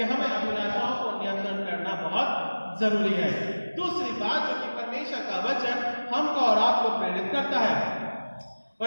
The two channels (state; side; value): inverted; both; correlation -1.00